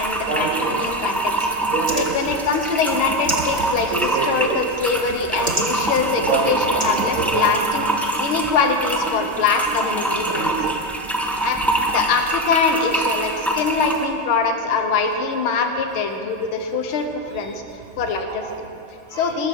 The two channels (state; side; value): normal; both; correlation 0.13